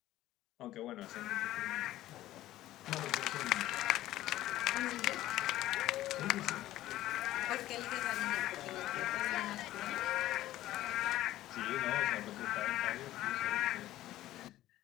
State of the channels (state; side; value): quieter; right; 14.8 dB